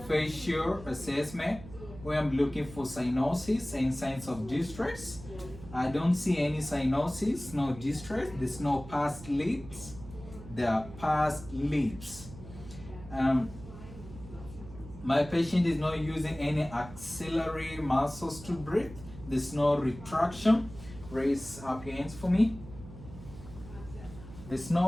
assessment, where I'm looking for cyanosis and signs of distress. I don't see any cyanosis, no distress. There's no pursed lips. There are pursed lips. My patient is not using any axillary muscles to breathe. There's no retraction. Raise up your hands for me. There's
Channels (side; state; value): right; noise; hum, 15 dB below the sound